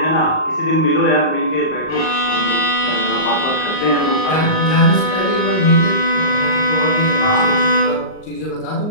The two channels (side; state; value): right; late; 38 ms